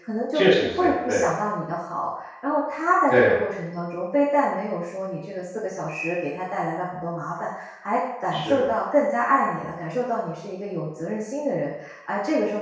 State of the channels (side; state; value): both; identical; correlation 1.00